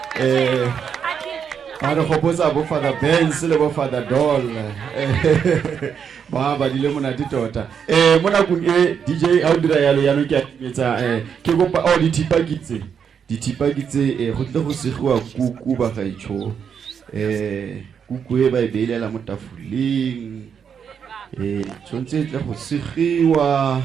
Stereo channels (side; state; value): left; quieter; 7.3 dB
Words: Ba re gopotsa bo Father Benz le bo Father Doll. Ba badile monate tota. Mo nakong e DJ a o dira yalo ya no ke ametsa ke gopa o dithipa kitse go tle go segiwa kuku bagaetsho. Kuku e ba e beilela mo tafoleng tshwanetse tle go segiwa